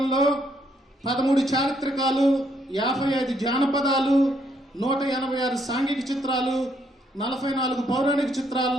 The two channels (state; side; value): normal; both; correlation 0.72